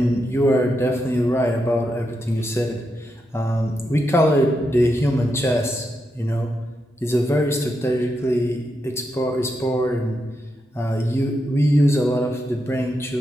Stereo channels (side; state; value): both; normal; correlation 0.84